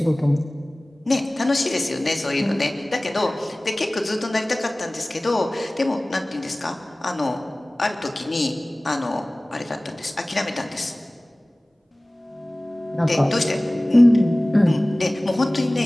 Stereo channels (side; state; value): both; normal; correlation 0.98